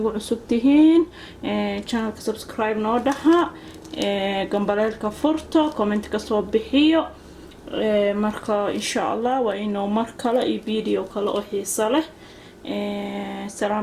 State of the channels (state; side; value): identical; both; correlation 1.00